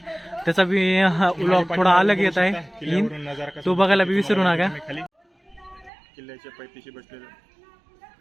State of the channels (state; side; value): drops out; left; at 5.9 s